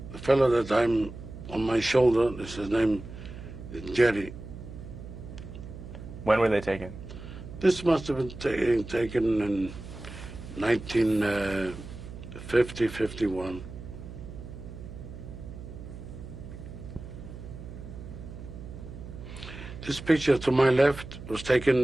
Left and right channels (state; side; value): noise; right; hum, 12 dB below the sound